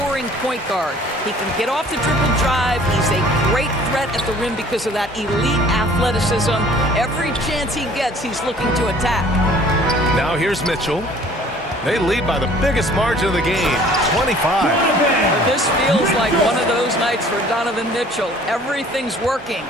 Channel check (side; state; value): both; normal; correlation 0.52